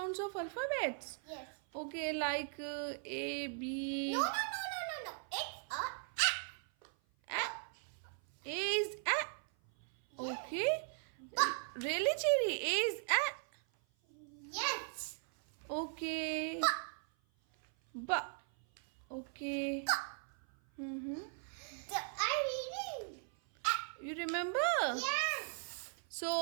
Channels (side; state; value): left; silent; 52 dB below the other